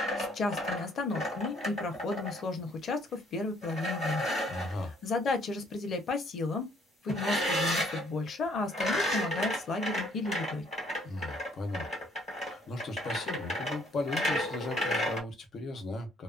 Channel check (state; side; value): normal; both; correlation 0.63